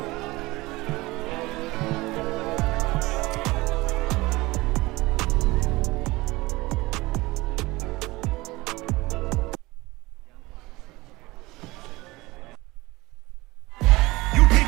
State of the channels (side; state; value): left; quieter; 21.2 dB